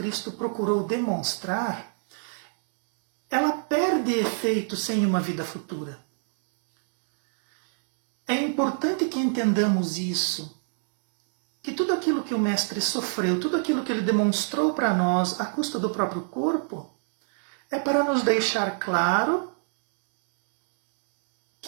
procurou demonstrar, ela perde efeito sem uma vida futura. É importante que entendamos isso, que tudo aquilo que o Mestre sofreu, tudo aquilo que ele demonstrou para nós à custa do próprio corpo, é para nos deixar claro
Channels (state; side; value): silent; left; digital silence